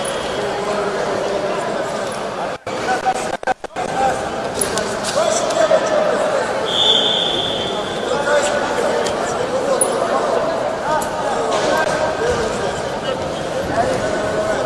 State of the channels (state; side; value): identical; both; correlation 1.00